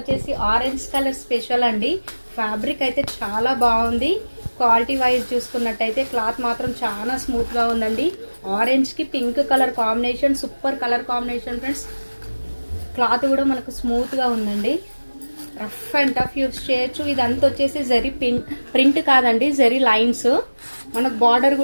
ఆరెంజ్ కలర్ స్పెషల్ అండి. ఫ్యాబ్రిక్ అయితే చాలా బాగుంది. క్వాలిటీ వైజ్ చూసుకున్నట్టయితే క్లాత్ మాత్రం చాలా స్మూత్గా ఉందండి. ఆరెంజ్కి pink colour combination, super colour combination friends. Cloth కూడా మనకు స్మూత్గా ఉందండి. రఫ్ అండ్ టఫ్ యూస్ చేయొచ్చు. ఇదంతా వచ్చేసి జరీ ప్రింట్ కాదండి, జరీ లైన్స్. మనకు బార్డర్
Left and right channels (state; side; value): inverted; both; correlation -1.00